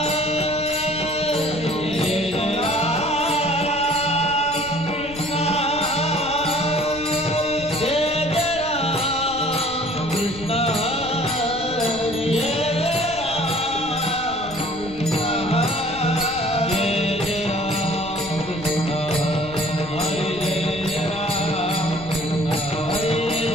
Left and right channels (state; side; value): noise; left; rumble, 16 dB below the sound